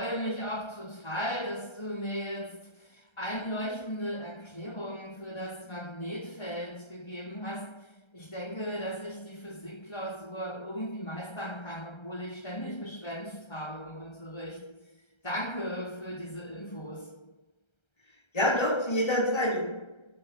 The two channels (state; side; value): late; right; 1.3 ms